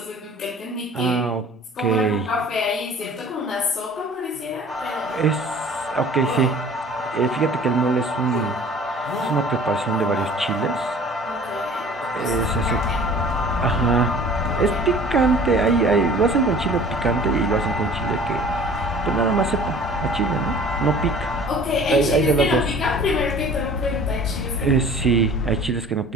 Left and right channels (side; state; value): both; normal; correlation 0.47